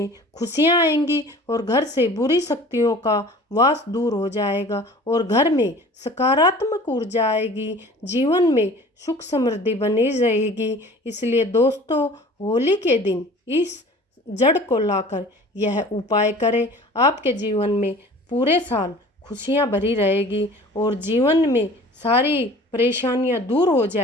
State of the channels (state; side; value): normal; both; correlation 0.45